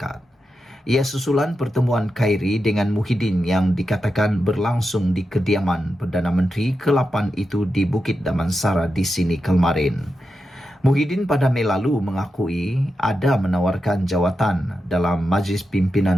Ia susulan pertemuan Khairi dengan Muhyiddin yang dikatakan berlangsung di kediaman Perdana Menteri ke-8 itu di Bukit Damansara di sini kemarin. Muhyiddin pada Mei lalu mengakui ada menawarkan jawatan dalam Majlis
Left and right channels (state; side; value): normal; both; correlation 0.89